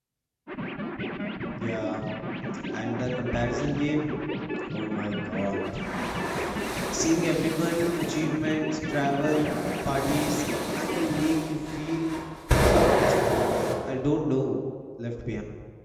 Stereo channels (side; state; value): both; identical; correlation 1.00